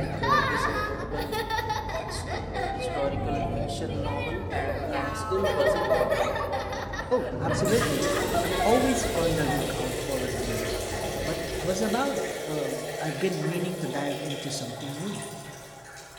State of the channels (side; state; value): both; identical; correlation 1.00